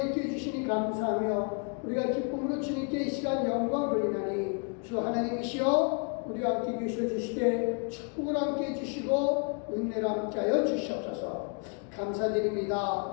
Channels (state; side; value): quieter; right; 38.2 dB